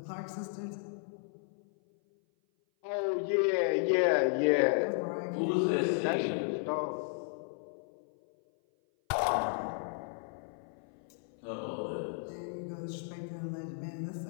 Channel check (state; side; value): silent; right; 55 dB below the other